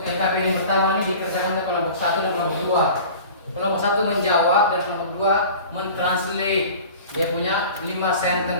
LKP yang pertama ini dikerjakan oleh kelompok 1 dan kelompok 2. Kelompok 1 menjawab dan kelompok 2 mentranslate. Dia punya 5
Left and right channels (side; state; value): both; inverted; correlation -0.40